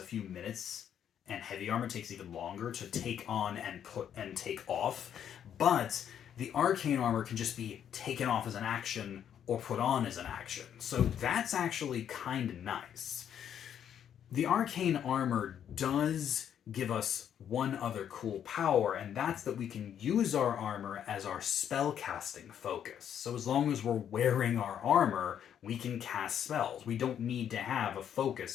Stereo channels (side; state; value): right; quieter; 9.2 dB